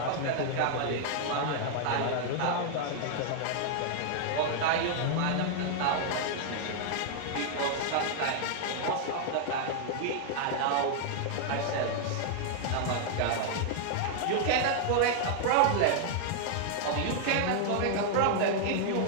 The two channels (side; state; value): both; different; correlation 0.00